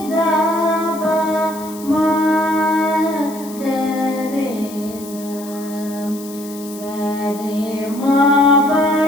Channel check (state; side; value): noise; left; hiss, 17 dB below the sound